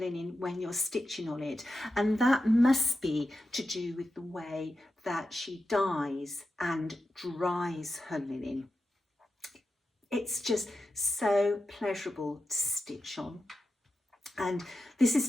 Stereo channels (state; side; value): normal; both; correlation 0.90